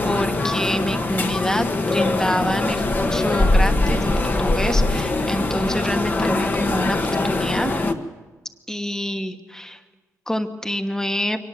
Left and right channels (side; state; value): both; normal; correlation 0.88